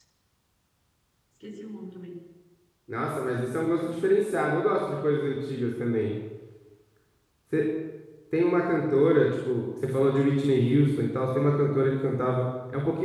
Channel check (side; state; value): both; identical; correlation 1.00